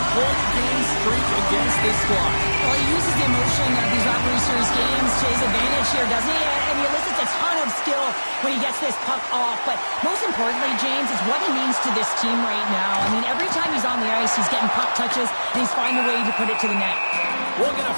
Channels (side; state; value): both; inverted; correlation -1.00